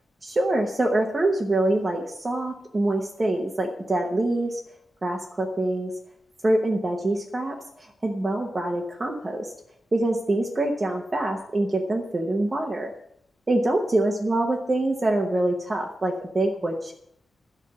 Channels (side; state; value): both; normal; correlation 0.92